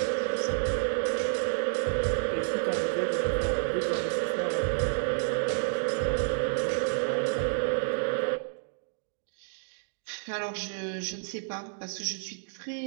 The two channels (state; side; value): silent; left; digital silence